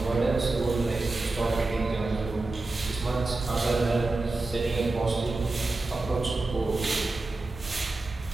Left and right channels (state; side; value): quieter; left; 3.2 dB